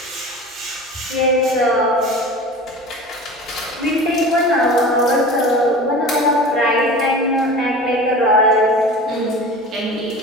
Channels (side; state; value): both; normal; correlation 0.36